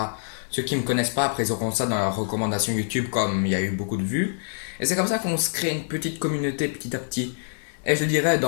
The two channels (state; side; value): silent; right; digital silence